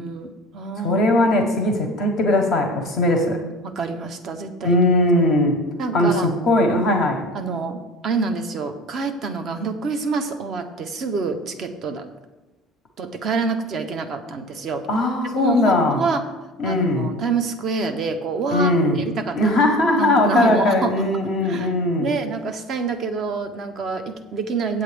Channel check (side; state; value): both; normal; correlation 0.39